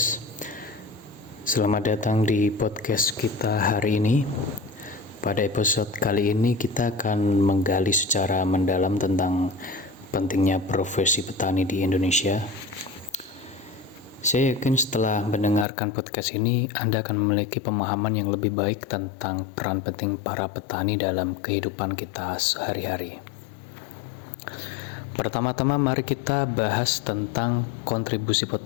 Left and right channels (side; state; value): right; drops out; at 15.7 s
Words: Selamat datang di podcast kita hari ini. Pada episode kali ini kita akan menggali secara mendalam tentang pentingnya profesi petani di Indonesia. Saya yakin setelah mendengarkan podcast ini, Anda akan memiliki pemahaman yang lebih baik tentang peran penting para petani dalam kehidupan kita sehari-hari. Pertama-tama mari kita bahas tentang kontribusi